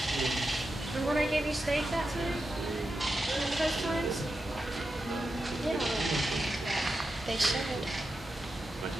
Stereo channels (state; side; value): normal; both; correlation 0.89